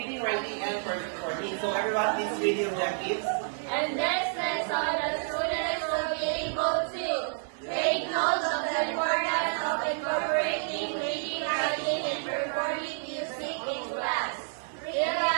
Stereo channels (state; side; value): silent; left; 58 dB below the other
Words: writing, and recording. So everyone, please read the objectives. And next lesson, the students will be able to take notes of the importance of incorporating reading, writing, and performing music in class.